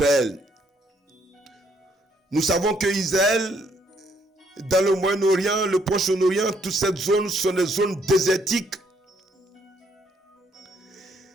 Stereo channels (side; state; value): both; normal; correlation 0.70